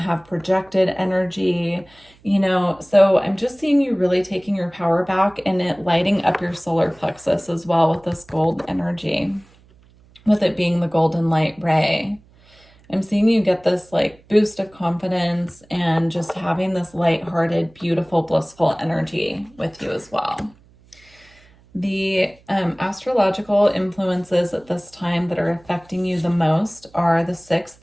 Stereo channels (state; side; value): noise; right; hum, 28 dB below the sound